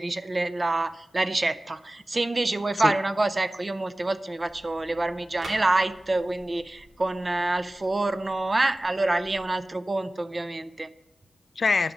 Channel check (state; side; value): normal; both; correlation 0.97